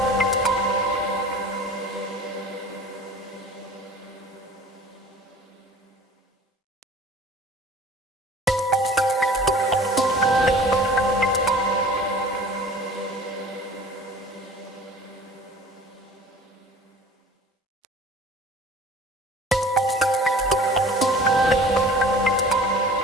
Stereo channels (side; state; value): both; normal; correlation 0.44